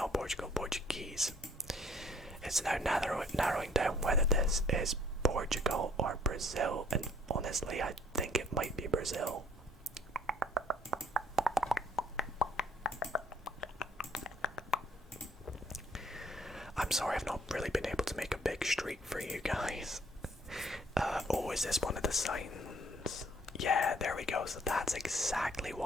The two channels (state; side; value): normal; both; correlation 0.61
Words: Portugal, Portuguese. It's now narrowing down whether this is Portugal or Brazil, and honestly, I think it might be Brazil. streak for you guys. Oh, is this one of the signs? Yeah, there we go. So that's exactly